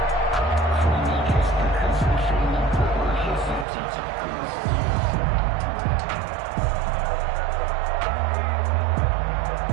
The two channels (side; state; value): left; drops out; at 3.7 s